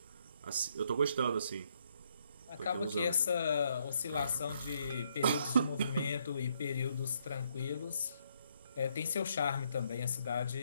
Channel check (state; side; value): inverted; both; correlation -0.73